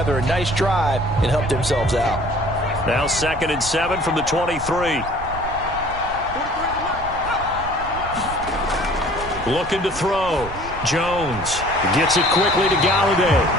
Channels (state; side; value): noise; right; rumble, 12 dB below the sound